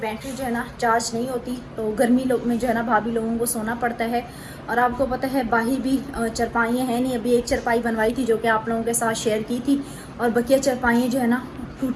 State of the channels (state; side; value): identical; both; correlation 1.00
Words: जो है ना चार्ज नहीं होती। तो गर्मी में जो है ना भाभी लोगों को सोना पड़ता है। और आपको पता है बाहर भी चरपाइयाँ हैं नहीं। अभी एक चरपाई बनवाई थी जो कि आप लोगों के साथ शेयर की थी और बकिया चरपाइयाँ जो है ना